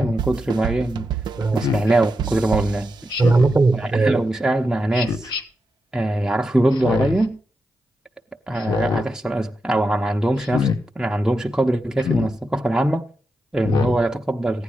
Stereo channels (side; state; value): both; normal; correlation 0.87